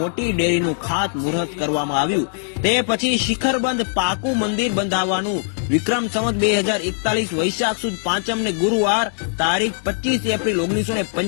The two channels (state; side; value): silent; right; 65 dB below the other